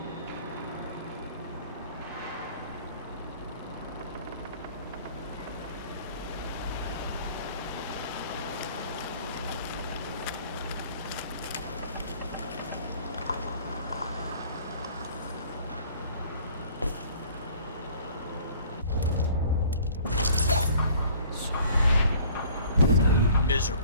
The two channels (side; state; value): both; inverted; correlation -0.53